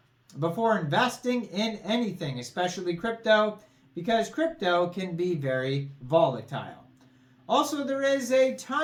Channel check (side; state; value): both; identical; correlation 1.00